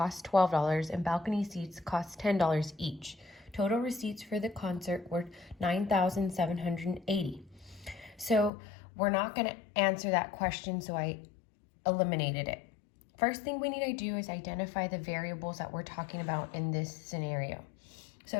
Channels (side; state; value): right; drops out; at 8.5 s